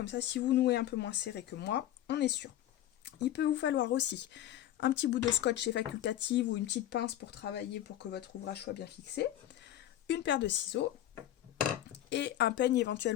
ça si vous nouez un peu moins serré que moi, on est sûr. Il peut vous falloir aussi un petit bout de scotch chez Facultative ou une petite pince pour travailler pour que votre ouvrage soit bien fixé. Une paire de ciseaux et un peigne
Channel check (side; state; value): right; quieter; 12.7 dB